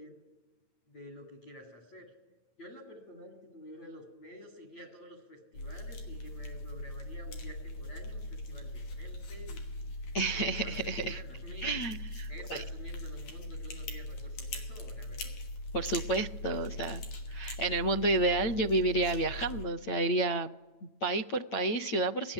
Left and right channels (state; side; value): late; right; 9.0 ms